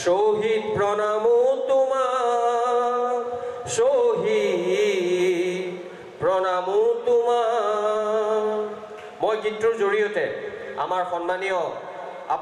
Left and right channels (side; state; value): both; identical; correlation 1.00